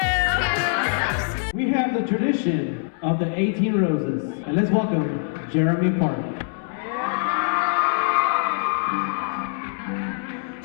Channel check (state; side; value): silent; right; 63 dB below the other